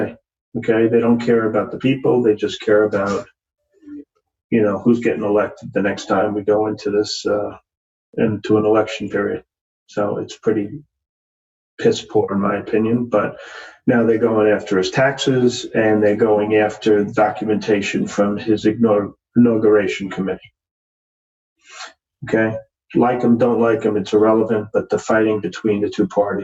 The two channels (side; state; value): both; identical; correlation 1.00